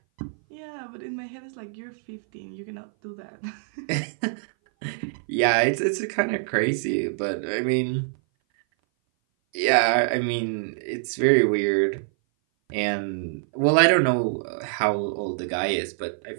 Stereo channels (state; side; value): silent; left; 58 dB below the other